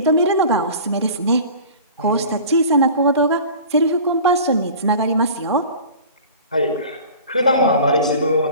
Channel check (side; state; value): both; inverted; correlation -0.40